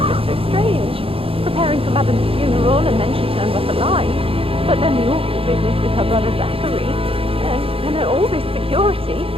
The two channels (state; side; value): late; left; 0.27 ms